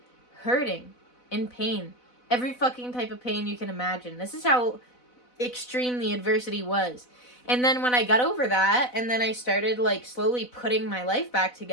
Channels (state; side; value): late; right; 4.0 ms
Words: hurting, in pain. Every fucking type of pain you can imagine. This is how extreme the adversity was. And then when I got over that, and then I started, like, slowly putting my life back